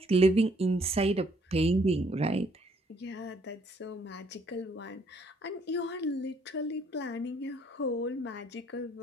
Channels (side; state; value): both; normal; correlation 0.66